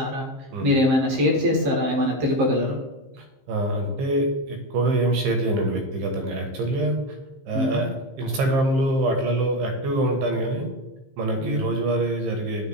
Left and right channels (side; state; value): left; late; 15 ms